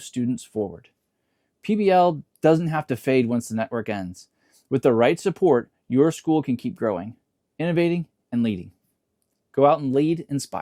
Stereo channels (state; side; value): identical; both; correlation 1.00